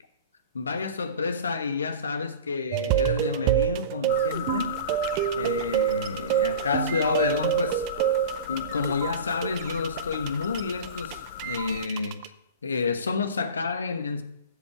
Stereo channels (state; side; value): inverted; both; correlation -0.34